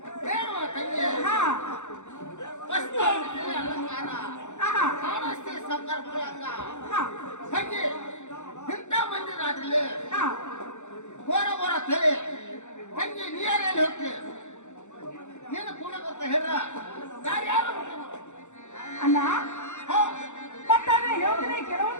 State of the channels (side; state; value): right; late; 0.84 ms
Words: ಏನು ತಂಗಿ ಹಾ ವಸ್ತು ಅಲಂಕಾರ ಆಹಾ. ಕಾಣಿಸ್ತಿ ಸಾವುಕಾರ ಮಗಳಂಗ ಹಾ. ತಂಗಿ ಇಂಥ ಮಂದಿ ರಾತ್ರಿಲಿ ಹಾ. ಘೋರ ತಲೆ ತಂಗಿ ನೀರಲ್ಲಿ ಹೋಗ್ತಿ ನೀನು ಕೂಡ ಬರ್ತಾ ಹೇಳ್ರ ದಾರಿ ಯಾರು ಅಣ್ಣ ಹೋ ಮತ್ತಾದ್ರೆ ಹೇಳ್ತೀನಿ